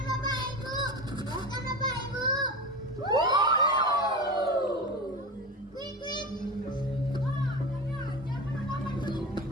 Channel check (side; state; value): both; normal; correlation 0.26